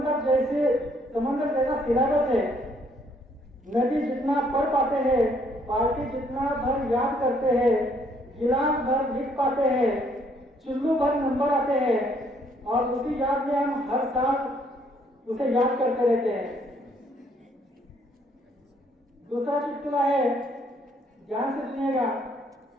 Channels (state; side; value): normal; both; correlation 0.67